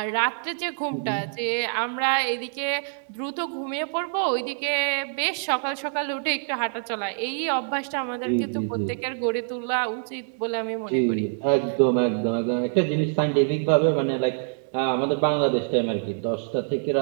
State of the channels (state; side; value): silent; left; 61 dB below the other